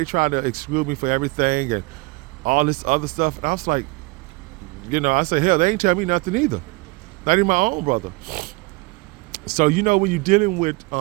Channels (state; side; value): quieter; left; 25.0 dB